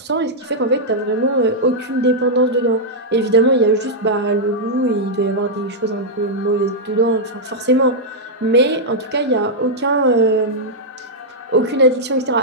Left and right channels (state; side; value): normal; both; correlation -0.06